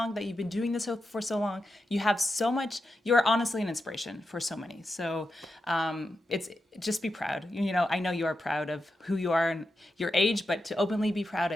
that you've been doing this for so long. You have so much, you're honestly an inspiration for so many. So it's just be proud. I know you are proud of who you are and your age, but to openly be proud, I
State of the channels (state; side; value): normal; both; correlation 0.88